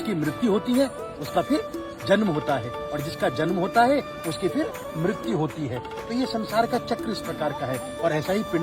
मृत्यु होती है उसका फिर जन्म होता है, और जिसका जन्म होता है उसकी फिर मृत्यु होती है। तो ये संसार का चक्र इस प्रकार का है, और ऐसा ही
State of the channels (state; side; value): identical; both; correlation 1.00